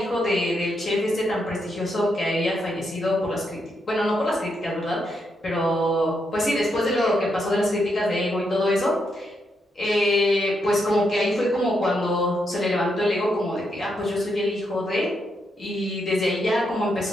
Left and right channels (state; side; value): normal; both; correlation 0.81